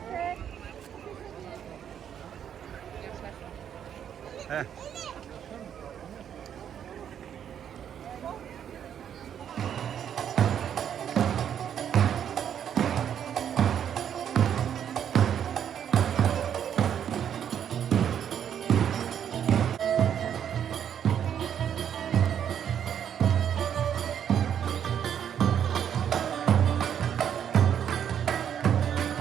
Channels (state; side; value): quieter; left; 9.0 dB